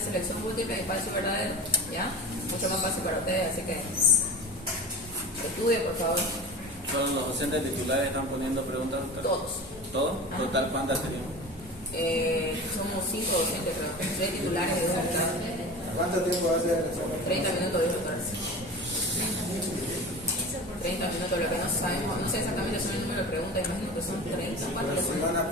selección múltiple y falso y verdadero, ya. Mucho más fácil para ustedes, así que estudien, por favor. ¿Todos los docentes titulares están poniendo preguntas? Todos. ¿Todos? ¿Total cuántas tenemos? Somos 5 docentes, creo. 3 titulares y 2 alumnos. ¿Cuánto tiempo va a ser el examen? 30 minutos, dijo el doctor Arce. 30 minutos, lo que no sabemos, no sé exactamente son el número de preguntas, imagino que son 30. ¿Cuántos Pero si van a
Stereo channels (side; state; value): both; normal; correlation 0.33